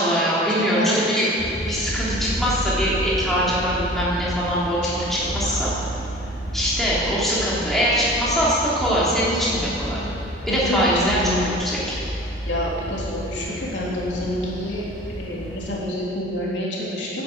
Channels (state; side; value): normal; both; correlation 0.42